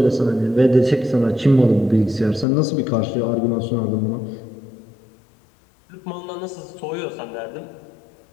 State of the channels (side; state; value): right; drops out; at 2.5 s